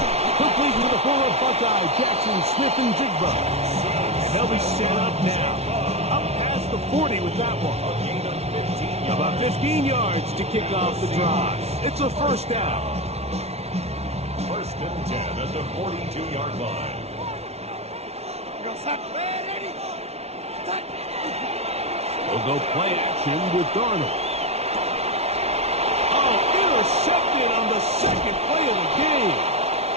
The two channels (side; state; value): left; late; 0.31 ms